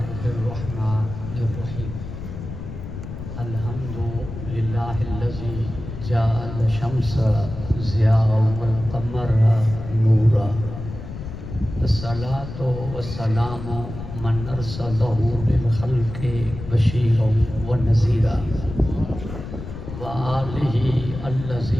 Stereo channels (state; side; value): noise; left; rumble, 9 dB below the sound